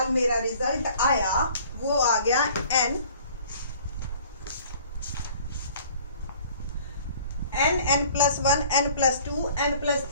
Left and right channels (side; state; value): both; inverted; correlation -0.51